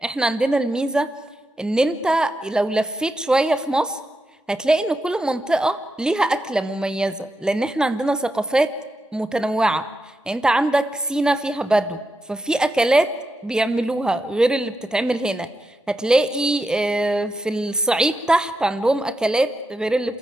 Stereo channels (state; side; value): normal; both; correlation 0.86